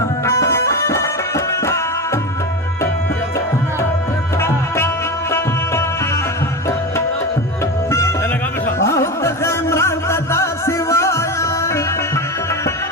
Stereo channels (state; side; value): normal; both; correlation 0.23